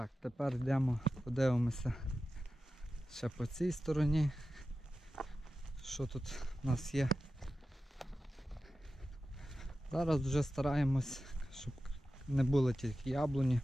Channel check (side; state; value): both; normal; correlation 0.93